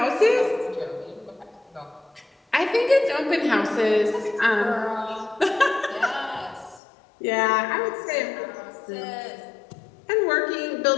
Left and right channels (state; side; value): drops out; right; at 6.8 s